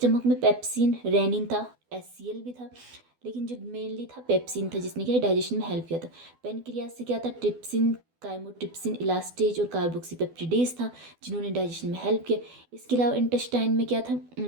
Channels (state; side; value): late; left; 12 ms